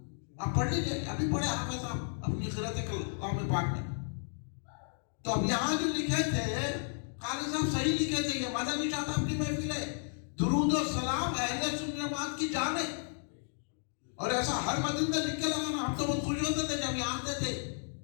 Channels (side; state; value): right; silent; digital silence